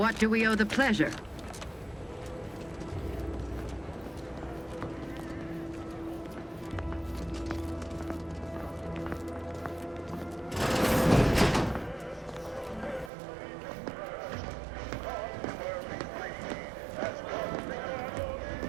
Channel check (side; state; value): left; drops out; at 13.1 s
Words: do we owe the pleasure?